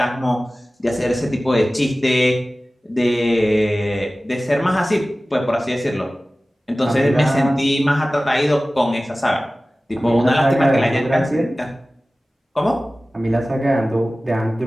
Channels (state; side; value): normal; both; correlation 0.97